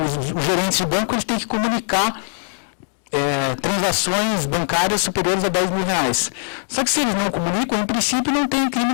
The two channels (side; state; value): right; silent; digital silence